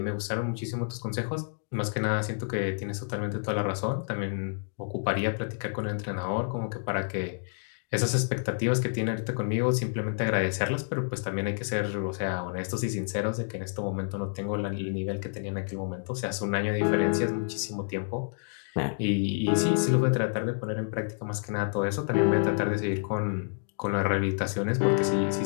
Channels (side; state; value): right; silent; digital silence